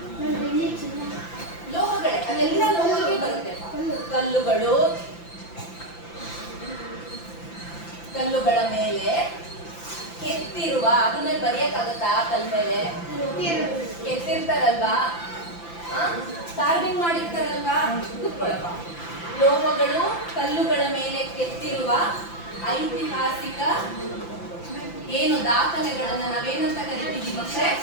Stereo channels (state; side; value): late; right; 5.9 ms